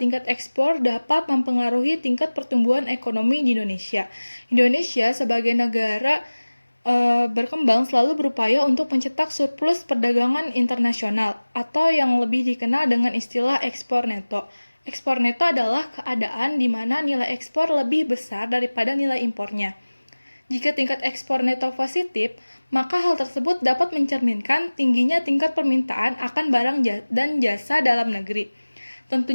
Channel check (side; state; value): both; inverted; correlation -1.00